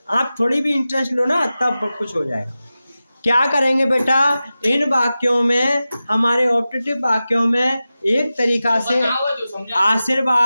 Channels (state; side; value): inverted; both; correlation -0.95